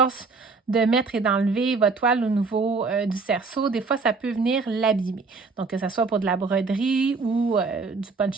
de mettre et d'enlever votre toile au niveau du cerceau, des fois, ça peut venir l'abîmer. Donc, que ce soit pour de la broderie ou du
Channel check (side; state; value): left; quieter; 4.3 dB